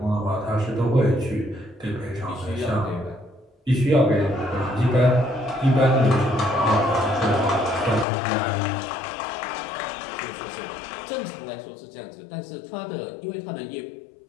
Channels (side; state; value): right; drops out; at 8.1 s